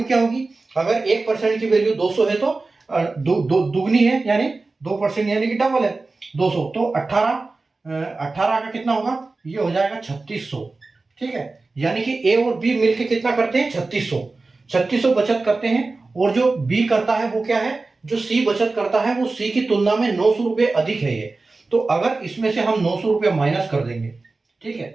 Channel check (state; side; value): quieter; left; 3.6 dB